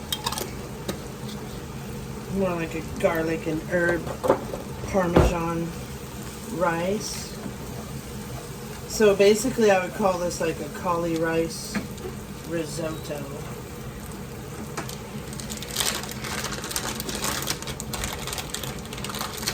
More like a garlic and herb Parmesan rice. So basically I would call this like a cauli rice risotto.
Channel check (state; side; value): identical; both; correlation 1.00